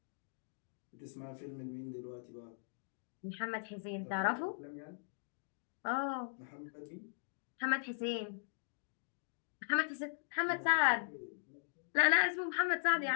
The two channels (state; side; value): silent; right; digital silence